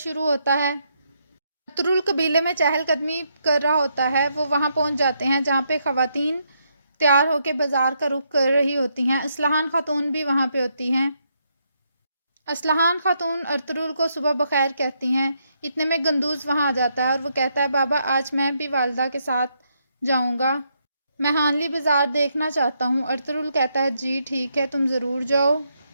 ہوتا ہے۔ ارطغرل قبیلے میں چہل قدمی کر رہا ہوتا ہے، وہ وہاں پہنچ جاتے ہیں جہاں پہ خواتین تیار ہو کے بازار کا رخ کر رہی ہوتی ہیں۔ اسلحان خاتون بھی وہاں پہ ہوتی ہیں۔ اسلحان خاتون ارطغرل کو صبح بخیر کہتی ہیں، اتنے میں گندوز وہاں آ جاتا ہے اور وہ کہتا ہے بابا آج میں بھی والدہ کے ساتھ جاؤں گا، میں ہانلی بازار دیکھنا چاہتا ہوں۔ ارطغرل کہتا ہے جی ٹھیک ہے تم ضرور جاؤ۔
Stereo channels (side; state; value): both; inverted; correlation -0.77